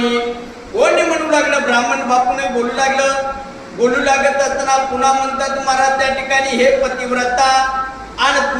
कोणी म्हणू लागलं, ब्राह्मण बापूने बोलू लागलं. बोलू लागत असताना पुन्हा म्हणतात महाराज त्या ठिकाणी, हे पतिव्रता आणि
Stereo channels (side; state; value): both; identical; correlation 1.00